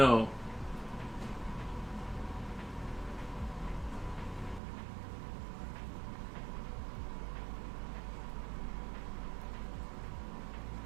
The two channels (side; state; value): left; drops out; at 4.6 s